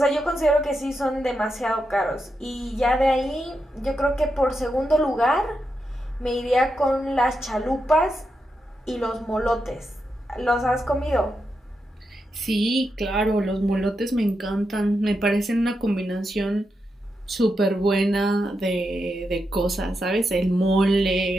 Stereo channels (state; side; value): normal; both; correlation 0.86